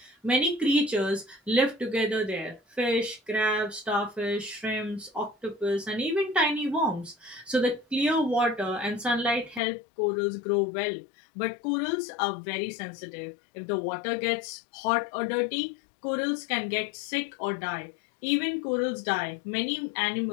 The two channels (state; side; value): drops out; right; at 9.6 s